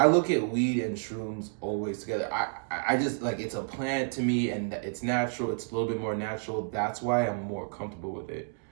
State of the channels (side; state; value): left; silent; 58 dB below the other